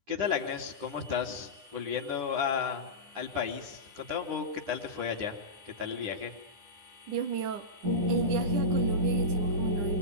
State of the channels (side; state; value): left; late; 10 ms